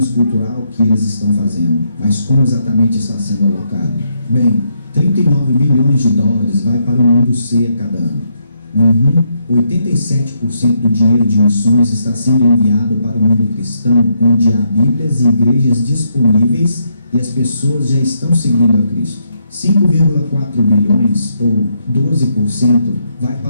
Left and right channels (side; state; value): both; inverted; correlation -0.77